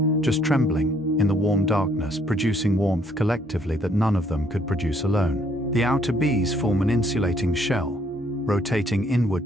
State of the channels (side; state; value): both; normal; correlation 0.67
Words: just trembling, in the warm darkness, producing warmth collectively that none of them could produce alone. The outer bees form an insulating shell, rotating